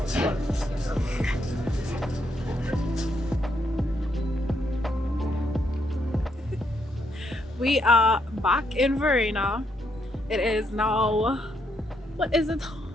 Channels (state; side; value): normal; both; correlation 0.76